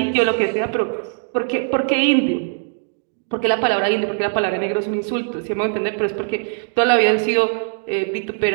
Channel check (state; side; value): silent; left; digital silence